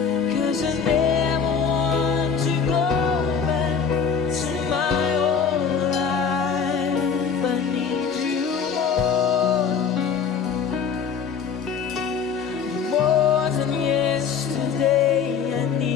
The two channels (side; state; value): right; quieter; 6.4 dB